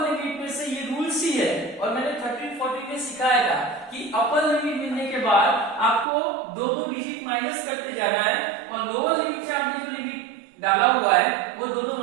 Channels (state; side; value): drops out; left; at 6.1 s